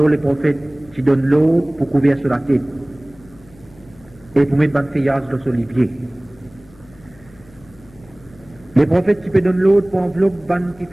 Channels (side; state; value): left; noise; hum, 26 dB below the sound